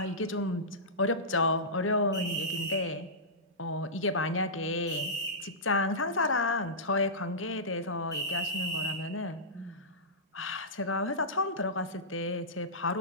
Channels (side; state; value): both; normal; correlation -0.17